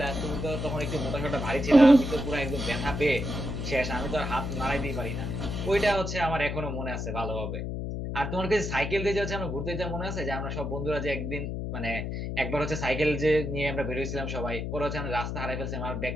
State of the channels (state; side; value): noise; left; hum, 4 dB below the sound